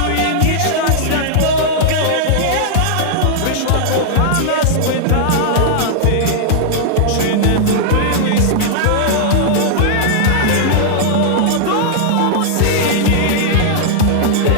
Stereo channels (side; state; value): both; different; correlation -0.01